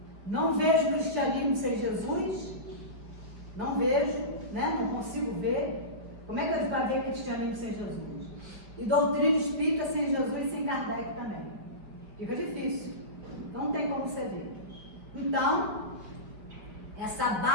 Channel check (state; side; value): late; left; 5.2 ms